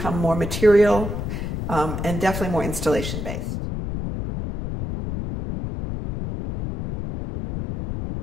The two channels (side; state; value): left; noise; rumble, 5 dB below the sound